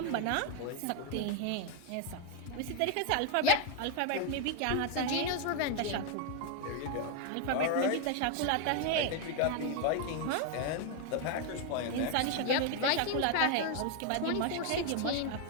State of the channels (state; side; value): different; both; correlation 0.01